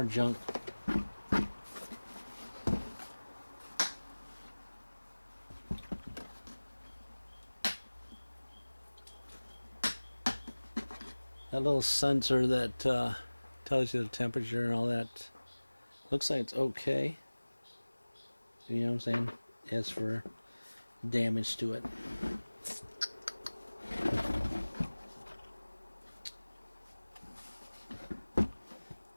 junk. That little sensor that tells you the temperature and all that looks like it's okay. You know what I'm saying? As for damage to it.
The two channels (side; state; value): both; inverted; correlation -1.00